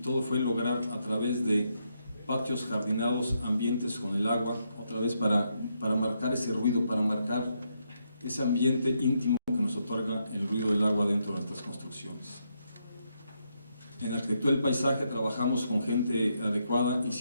fue lograr a través de patios jardinados, ambientes con el agua, otra vez para marcar ese ruido, para marcar ese ambiente íntimo que nos otorga el ruido del agua dentro de nuestras construcciones. En arquitectura del paisaje trabajamos con gente adecuada,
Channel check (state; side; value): inverted; both; correlation -0.79